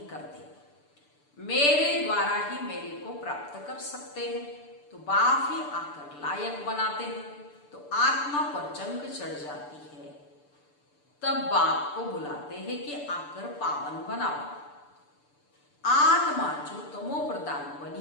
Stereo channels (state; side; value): late; right; 6.8 ms